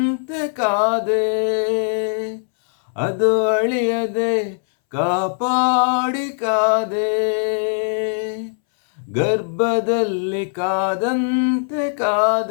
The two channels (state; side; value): silent; right; 64 dB below the other